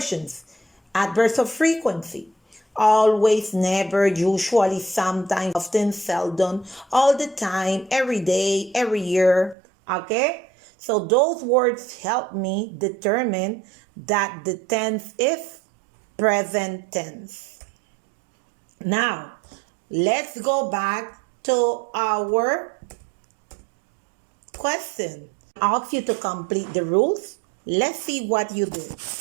Adverbs of frequency. Always, never, usually, sometimes, often, seldom, all the time, every day, every year. Okay? So those words help me determine that the tense is present tense. Now, let's go back to our question. Ask you to complete the rules. Let's see what you did.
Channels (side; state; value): left; drops out; at 9.6 s